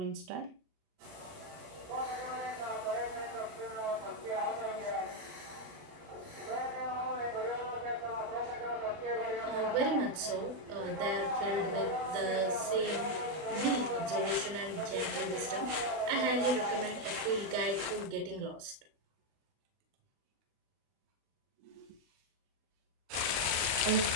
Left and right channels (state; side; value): late; left; 36 ms